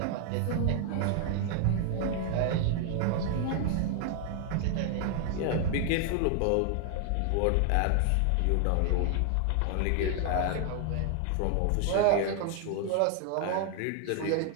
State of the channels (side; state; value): both; different; correlation 0.00